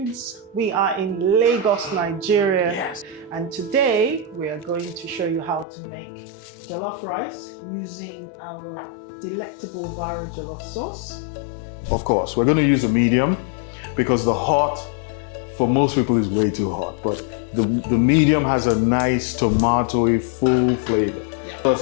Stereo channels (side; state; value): right; drops out; at 5.7 s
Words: We are in Lagos, Nigeria. Yes. And today we are going to show you how to make jollof rice using our delectable Varo Jollof Sauce. Of course, we're going to use a medium because the hot, for most people, is way too hot. But the medium has a nice tomatoey, full flavor. Yeah. What else